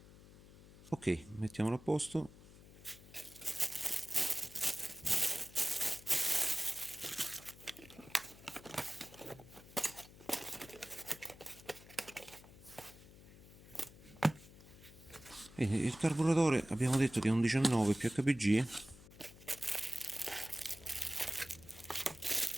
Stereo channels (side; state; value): left; noise; hum, 20 dB below the sound